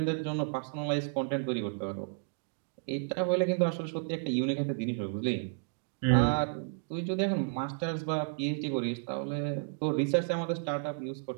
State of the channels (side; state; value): left; silent; digital silence